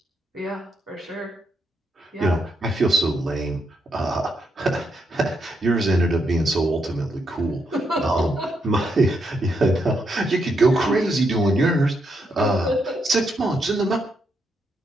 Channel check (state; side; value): normal; both; correlation 0.79